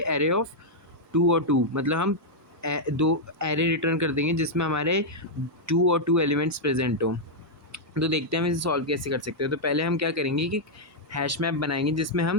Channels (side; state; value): both; normal; correlation -0.04